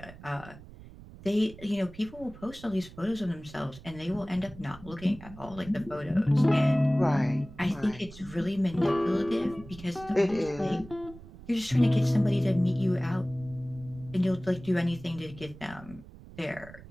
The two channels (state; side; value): noise; right; rumble, 18 dB below the sound